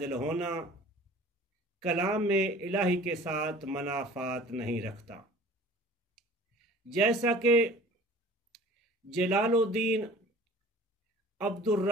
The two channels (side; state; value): both; normal; correlation 0.46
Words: ہونا کلام الہی کے ساتھ منافات نہیں رکھتا، جیسا کہ جلال الدین عبد